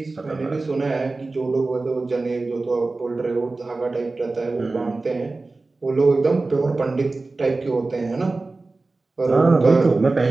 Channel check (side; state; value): left; quieter; 3.4 dB